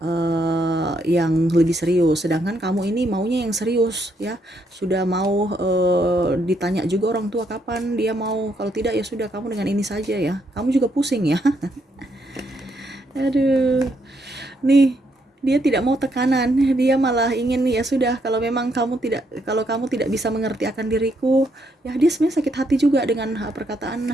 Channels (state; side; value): normal; both; correlation 0.75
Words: yang lebih serius. Sedangkan kamu ini maunya yang serius ya, sudah mau ditanya juga orang tua kapan dia mau, kalau tidak ya sudah kamu dengan ini saja ya, kamu juga pusing ya. Aduh, nih dia tidak mau tekanan, dia malah ingin ya sudah, kalau kamu tidak bisa mengerti akan diriku ya. Dia sebenarnya sakit hati juga dengan perkataan